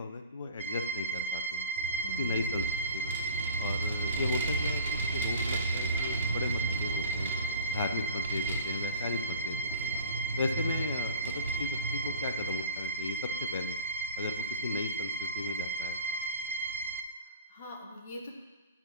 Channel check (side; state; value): both; inverted; correlation -0.43